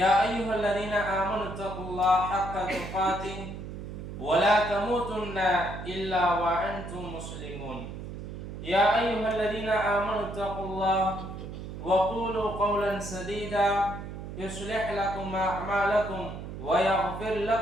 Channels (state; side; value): noise; right; hum, 9 dB below the sound